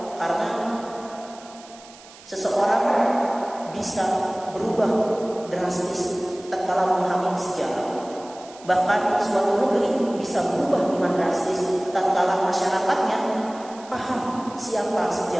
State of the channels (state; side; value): noise; right; hiss, 21 dB below the sound